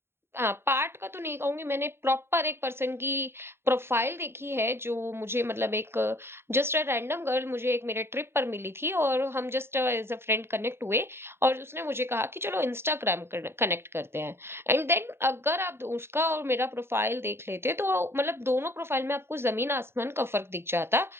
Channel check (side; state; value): left; late; 0.12 ms